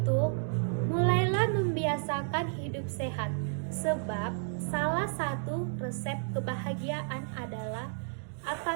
mulailah membiasakan hidup sehat, sebab salah satu resep kebahagiaan adalah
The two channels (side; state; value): left; silent; digital silence